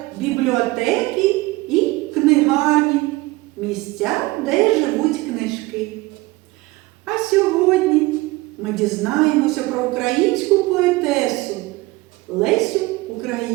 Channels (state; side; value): quieter; left; 21.1 dB